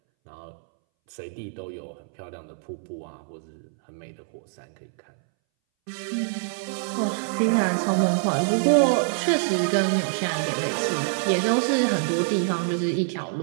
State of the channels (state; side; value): silent; left; 61 dB below the other